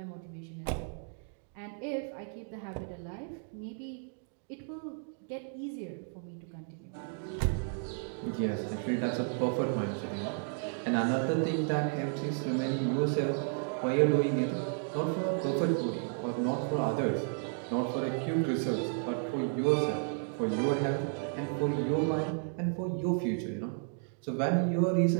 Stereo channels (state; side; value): silent; left; 56 dB below the other